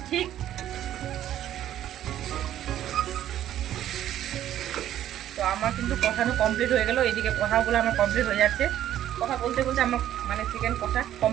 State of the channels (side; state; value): left; quieter; 11.8 dB